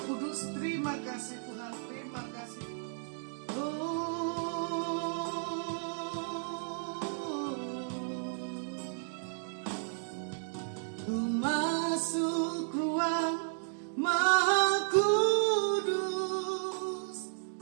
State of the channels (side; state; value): left; silent; digital silence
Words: Kudus, terima kasih Tuhan, terima kasih. Ku masuk ruang Maha Kudus